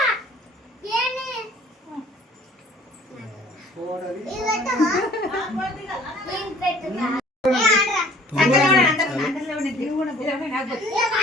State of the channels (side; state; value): both; normal; correlation 0.53